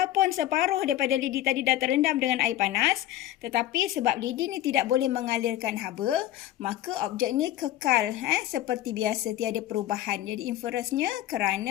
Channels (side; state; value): right; quieter; 13.8 dB